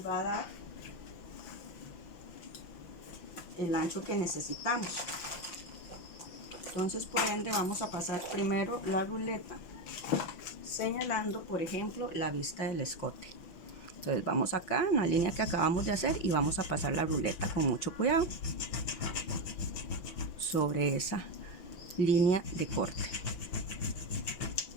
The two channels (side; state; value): right; late; 6.0 ms